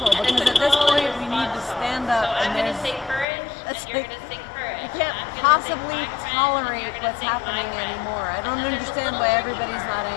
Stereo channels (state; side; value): drops out; right; at 3.2 s